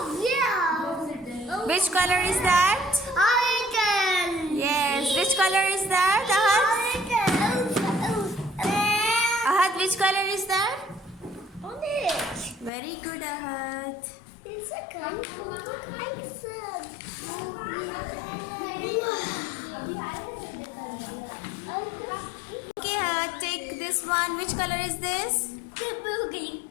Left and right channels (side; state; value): right; drops out; at 12.7 s